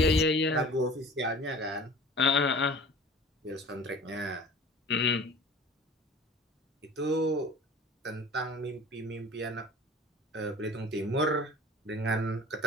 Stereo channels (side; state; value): both; normal; correlation 0.43